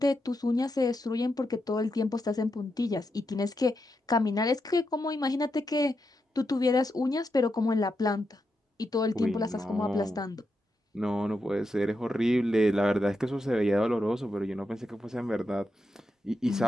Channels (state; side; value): normal; both; correlation 0.85